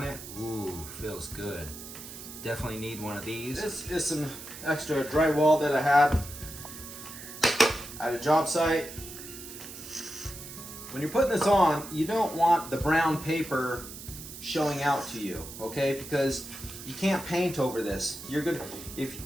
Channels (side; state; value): right; noise; hiss, 12 dB below the sound